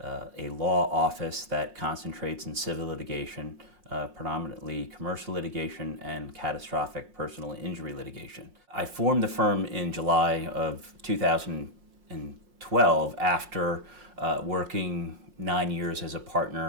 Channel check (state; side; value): late; left; 5.6 ms